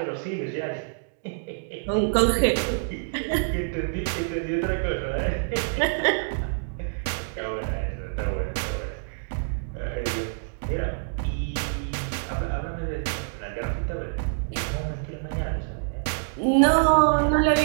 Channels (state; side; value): silent; left; digital silence